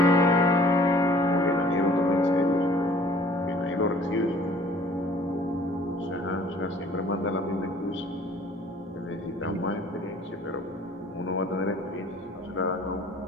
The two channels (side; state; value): both; normal; correlation 0.53